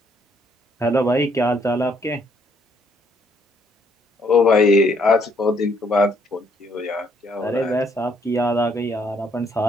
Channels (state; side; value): normal; both; correlation 0.68